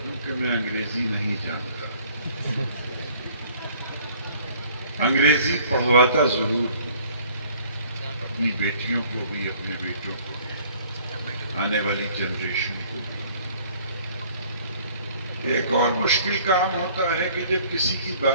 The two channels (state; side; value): inverted; both; correlation -0.56